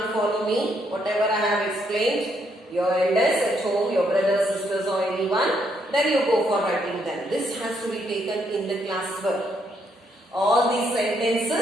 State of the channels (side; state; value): both; normal; correlation 0.74